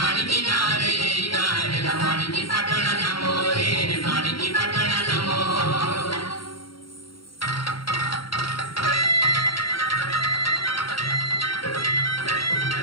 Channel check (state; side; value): late; right; 0.73 ms